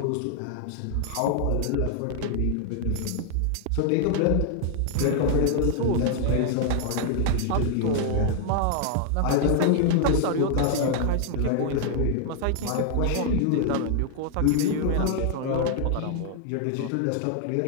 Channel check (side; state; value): both; different; correlation 0.00